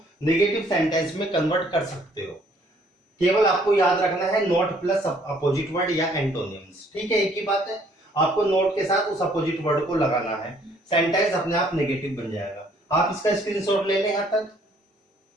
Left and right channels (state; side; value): normal; both; correlation 0.62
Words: नेगेटिव सेंटेंस में कन्वर्ट कर सकते हो। केवल आपको याद रखना है नॉट प्लस अपोजिट वर्ड या एंटोनिम्स। ठीक है, एक ही बात है। आपको नोट के साथ उस अपोजिट वर्ड को लगाना है, सेंटेंस अपने आप नेगेटिव बन जाएगा। आप इसका स्क्रीनशॉट ले लें यहां तक।